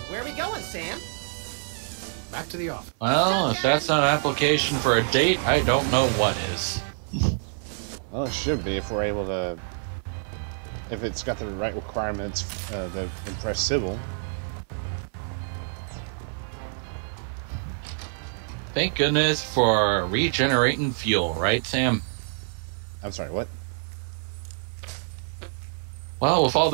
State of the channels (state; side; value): silent; left; 56 dB below the other